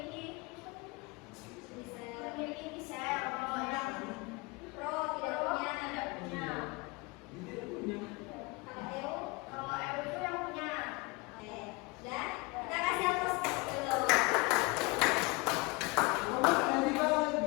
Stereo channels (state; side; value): quieter; right; 26.3 dB